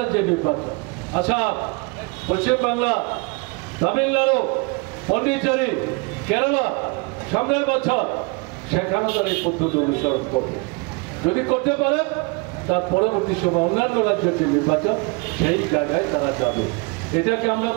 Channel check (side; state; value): left; quieter; 29.3 dB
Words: নির্বাচন, আসাম, পশ্চিমবাংলা, তামিলনাড়ু, পন্ডিচেরি, কেরালা, সামনের বছর সেখানে তারা এই পদ্ধতি অনুসরণ করবে। যদি করতে পারে তার পরবর্তী সময় অন্যান্য রাজ্যের যে নির্বাচন সেই জায়গায় তারা যাবে। এটাকে আমরা